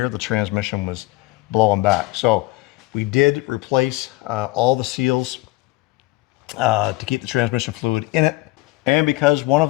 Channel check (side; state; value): right; quieter; 20.1 dB